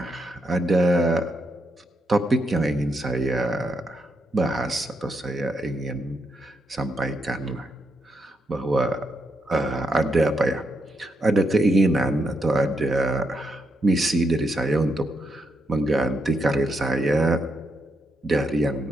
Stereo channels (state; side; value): normal; both; correlation 0.80